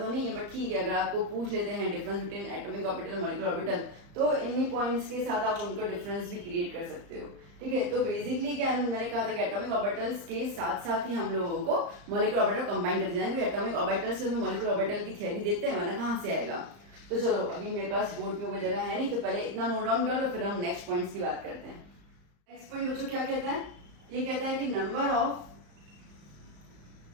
नहीं है बट ठीक है, अगर आपको पूछ लेते हैं difference between atomic orbital molecular orbital, तो इन्हीं पॉइंट्स के साथ आप उनको डिफरेंस भी क्रिएट कर सकते हो। ठीक है, तो बेसिकली क्या मैंने कहा था कि एटॉमिक ऑर्बिटल्स के साथ साथ ही हम लोगों को मॉलिक्यूलर ऑर्बिटल कंबाइन करते जाएंगे, क्योंकि एटॉमिक ऑर्बिटल से मॉलिक्यूलर ऑर्बिटल की थ्योरी देते हैं, वरना कहाँ से आएगा। तो चलो अभी मेरे पास बोर्ड में कोई जगह है नहीं, तो पहले इतना नोट डाउन कर लो, फिर हम नेक्स्ट पॉइंट्स की बात करते हैं। नेक्स्ट पॉइंट बच्चों क्या कहता है, ये कहता है कि number of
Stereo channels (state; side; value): late; left; 35 ms